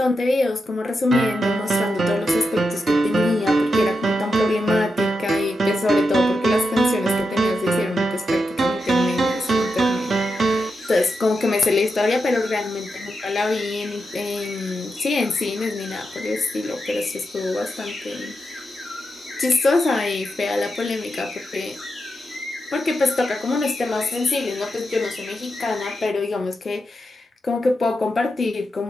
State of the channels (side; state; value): both; normal; correlation 0.87